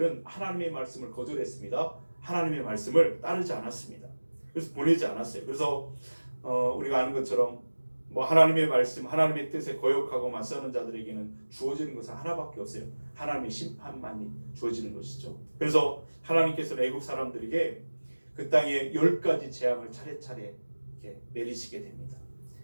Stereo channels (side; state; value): both; inverted; correlation -1.00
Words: 하나님의 말씀을 거절했습니다. 하나님의 말씀을 따르지 않았습니다. 그래서 보내지 않았어요. 그래서 우리가 아는 것처럼 하나님의 말씀, 하나님의 뜻에 거역하고 맞서는 자들에게는 주어지는 것은 하나밖에 없어요. 하나님의 심판만이 주어지는 것이죠. 그래서 하나님께서는 애굽 사람들에게 그 땅에 10가지 재앙을 차례차례 이렇게 내리시게 됩니다.